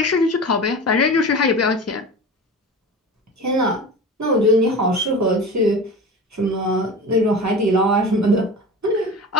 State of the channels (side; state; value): both; normal; correlation 0.33